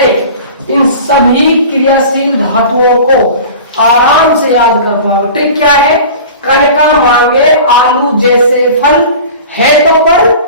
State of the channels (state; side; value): inverted; both; correlation -0.38